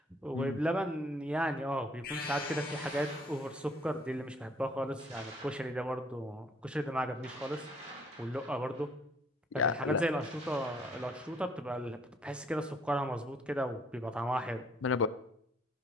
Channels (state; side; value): normal; both; correlation 0.62